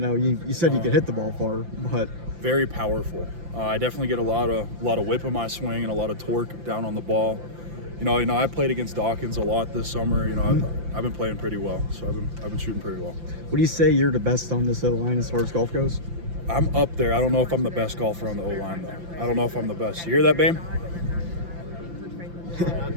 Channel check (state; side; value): late; left; 5.8 ms